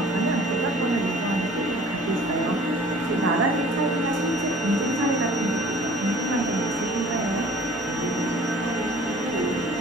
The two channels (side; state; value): both; normal; correlation 0.49